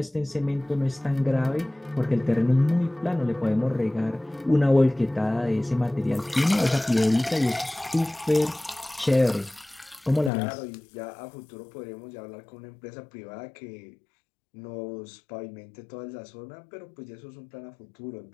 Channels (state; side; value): drops out; right; at 10.3 s